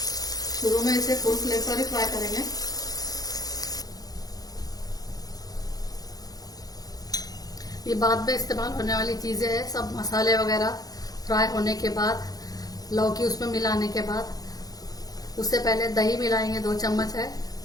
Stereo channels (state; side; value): late; right; 0.18 ms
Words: शुरू में इसे फुल फ्लेम पर ही फ्राई करेंगे। ये बाद में इस्तेमाल होने वाली चीजें हैं। सब मसाले वगैरह फ्राई होने के बाद, लौकी उसमें मिलाने के बाद, उससे पहले दही मिलाएंगे। 2 चम्मच है,